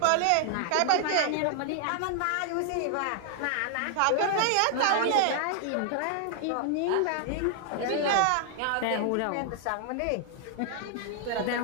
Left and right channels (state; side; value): different; both; correlation 0.00